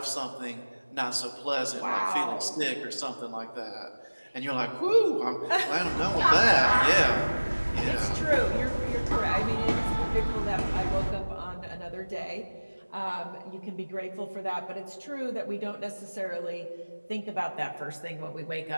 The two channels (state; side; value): inverted; both; correlation -1.00